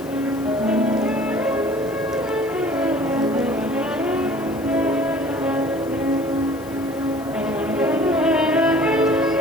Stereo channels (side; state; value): left; noise; hiss, 22 dB below the sound